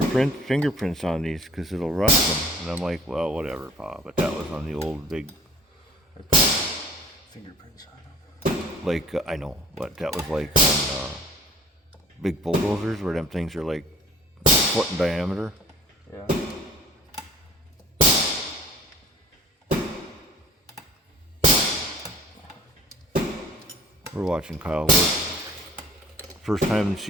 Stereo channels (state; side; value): normal; both; correlation 0.50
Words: fingerprints on these because it'll rust them. And I'm like, well, whatever, Pa. But that was on the old big... Fingerprints on them. Like, I know, but that was like on big bulldozers where them things are like a foot in diameter. Yeah. We're watching Kyle work. First time this